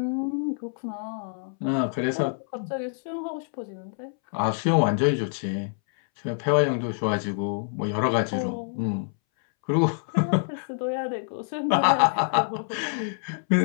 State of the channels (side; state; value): right; silent; 61 dB below the other